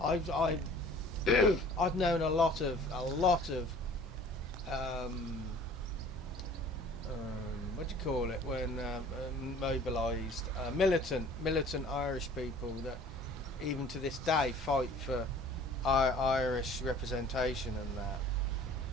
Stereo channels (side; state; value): both; normal; correlation 0.49